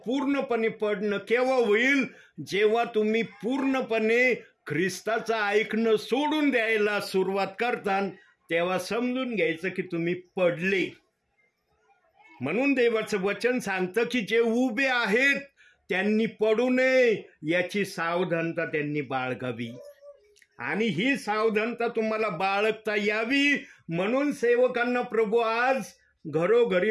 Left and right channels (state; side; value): identical; both; correlation 1.00